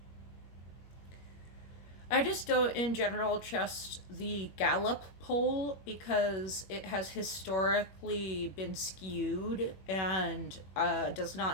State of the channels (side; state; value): right; late; 21 ms